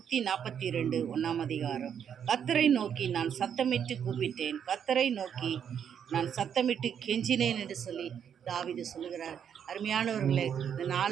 1ஆம் அதிகாரம். கர்த்தரை நோக்கி நான் சத்தமிட்டு கூப்பிட்டேன், கர்த்தரை நோக்கி நான் சத்தமிட்டு கெஞ்சினேன் என்று சொல்லி தாவீது சொல்லுகிறார். அருமையானவர்களே, இந்த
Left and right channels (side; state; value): left; quieter; 8.3 dB